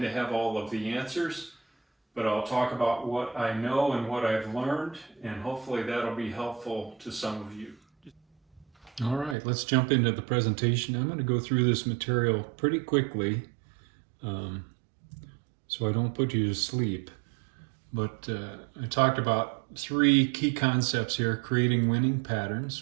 to have all of the answers, but I'll talk about what I know and what I've learned, and hopefully that'll be helpful to some of you. All right, let's jump into the presentation. I'm going to go through this material pretty quickly um, so I don't put you to sleep. But I talked about three key concepts here: creating winning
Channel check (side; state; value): left; drops out; at 9.3 s